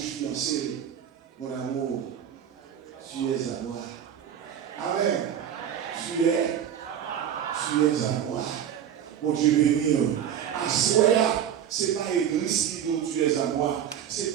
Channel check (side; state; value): left; quieter; 9.4 dB